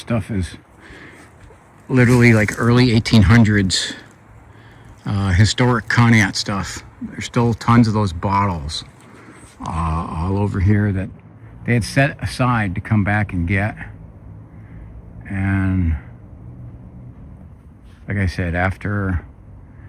is literally like early 1800s historic Conneaut stuff. There's still tons of those bottles all over here that they had set aside to come back and get. And like I said, after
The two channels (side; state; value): both; identical; correlation 1.00